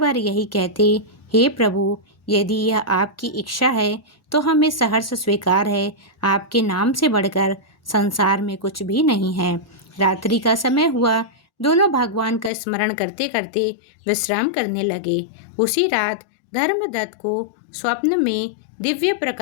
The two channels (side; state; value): right; drops out; at 12.5 s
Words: यही कहते, हे प्रभु, यदि यह आपकी इच्छा है तो हमें सहर्ष स्वीकार है। आपके नाम से बढ़कर संसार में कुछ भी नहीं है। रात्रि का समय हुआ। दोनों भगवान का स्मरण करते करते विश्राम करने लगे। उसी रात धर्मदत्त को स्वप्न में दिव्य